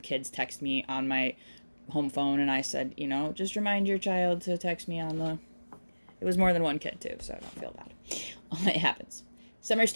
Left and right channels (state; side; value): inverted; both; correlation -1.00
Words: text me on my home phone, and I said, just remind your child to text me on the... It was more than one kid too, so I don't feel bad. It happens. Summer